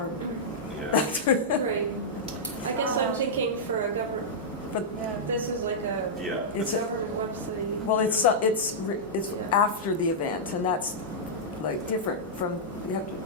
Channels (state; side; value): normal; both; correlation -0.10